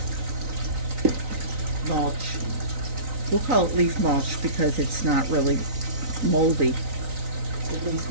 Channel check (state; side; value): late; left; 3.9 ms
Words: mulch. we'll call it leaf mulch because it's not really moldy. At least